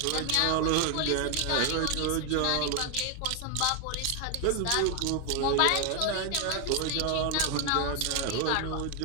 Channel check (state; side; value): different; both; correlation 0.01